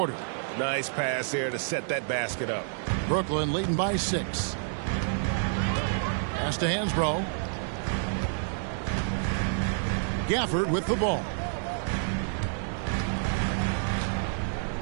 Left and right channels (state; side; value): silent; left; digital silence